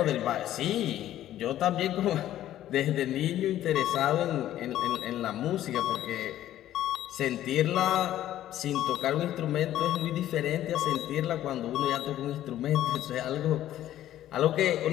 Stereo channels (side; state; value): right; quieter; 12.8 dB